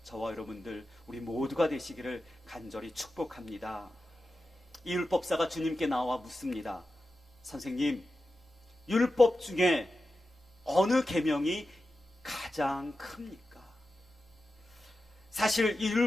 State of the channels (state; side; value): normal; both; correlation 0.92